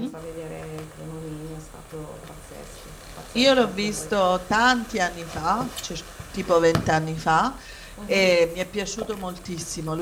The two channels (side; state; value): both; identical; correlation 1.00